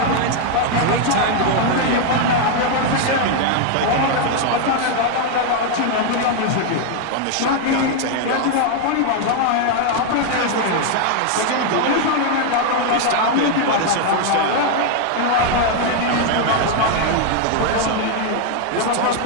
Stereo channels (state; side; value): different; both; correlation 0.00